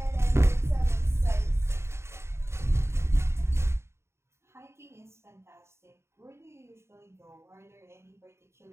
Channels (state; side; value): late; left; 0.13 ms